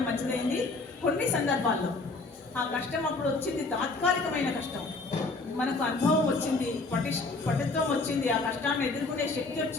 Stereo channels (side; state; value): right; quieter; 3.6 dB